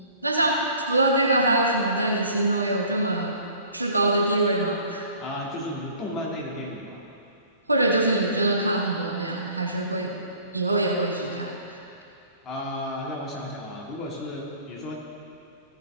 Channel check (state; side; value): inverted; both; correlation -0.51